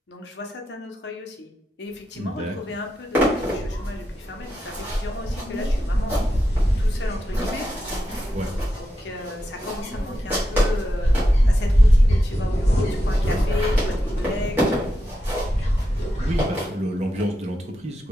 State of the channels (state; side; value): normal; both; correlation 0.87